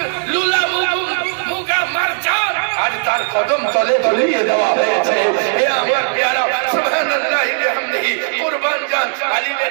কদম তলে ঝুলিয়ে দেওয়া হয়েছে। হে আমার প্যারা সুবহানাল্লাহি বিহামদিহি কুরবান জান আলিমে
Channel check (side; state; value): left; silent; digital silence